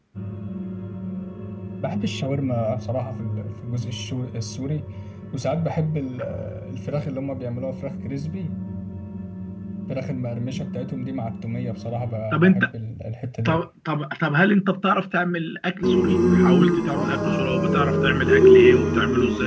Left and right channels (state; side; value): identical; both; correlation 1.00